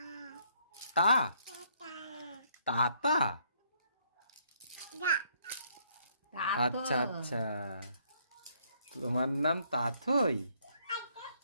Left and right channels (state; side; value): inverted; both; correlation -0.69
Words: তা? তাতা? আচ্ছা আচ্ছা, তোমার নাম তাথই?